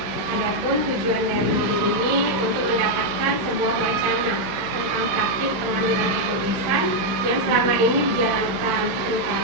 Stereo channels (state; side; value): late; left; 15 ms